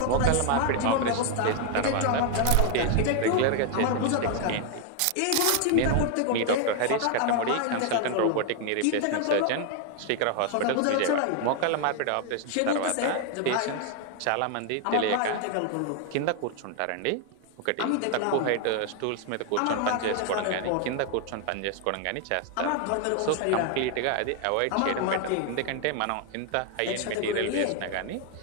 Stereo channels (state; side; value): different; both; correlation 0.01